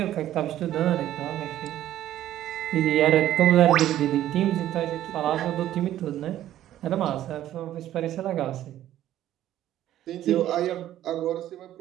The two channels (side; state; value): left; quieter; 12.7 dB